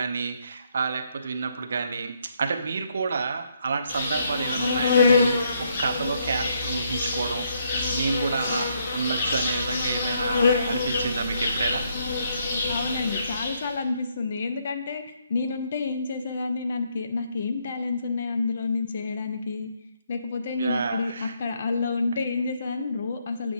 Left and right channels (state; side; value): inverted; both; correlation -0.74